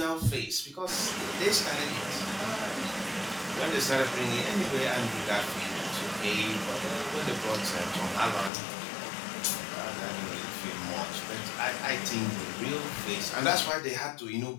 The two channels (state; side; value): drops out; right; at 8.5 s